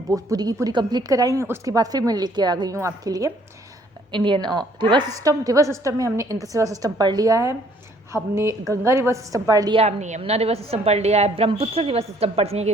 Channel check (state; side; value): normal; both; correlation 0.62